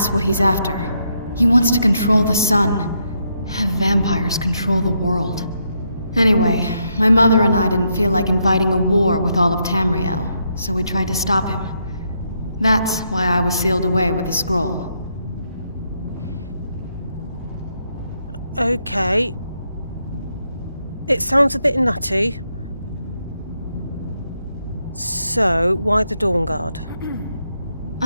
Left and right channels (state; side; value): inverted; both; correlation -0.78